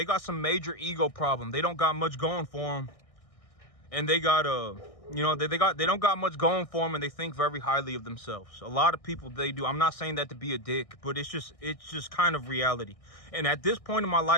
got some major ego problem. They don't got much going for them. And they got, you know, they don't got much going for them, and they think very highly of themselves. A lot of people, they do. I'm not saying that to be a dick, but it's just kind of reality. And at this point in my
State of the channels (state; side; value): late; right; 1.6 ms